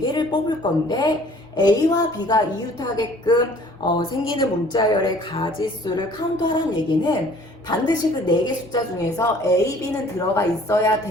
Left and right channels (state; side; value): normal; both; correlation 0.53